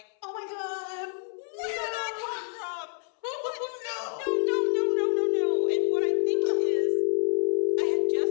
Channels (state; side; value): silent; right; 60 dB below the other